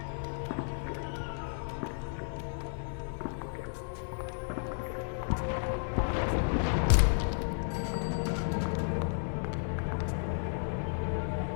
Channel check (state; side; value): silent; right; 56 dB below the other